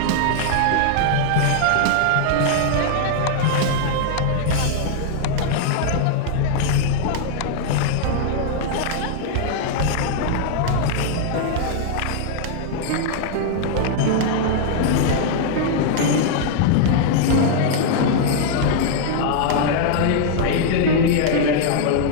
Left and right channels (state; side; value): different; both; correlation -0.01